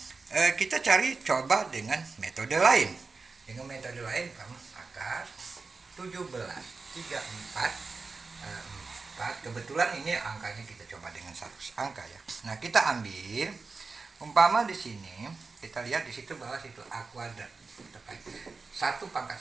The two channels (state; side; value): quieter; left; 4.3 dB